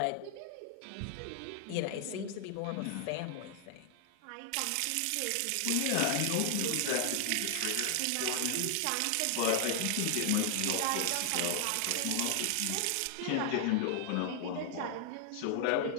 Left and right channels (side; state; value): both; different; correlation 0.00